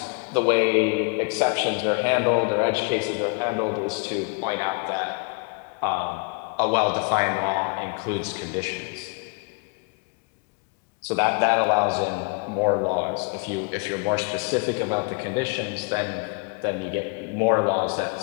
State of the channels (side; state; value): right; quieter; 32.7 dB